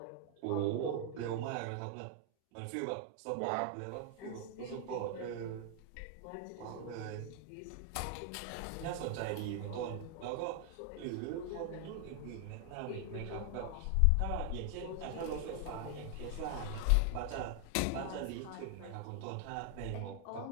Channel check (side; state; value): both; different; correlation 0.00